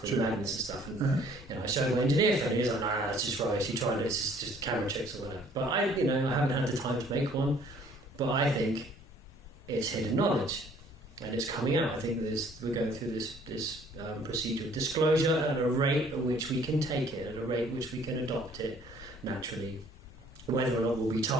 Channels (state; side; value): normal; both; correlation 0.58